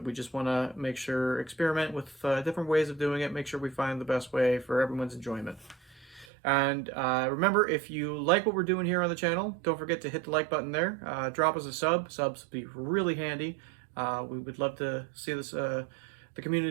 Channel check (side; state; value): left; drops out; at 6.2 s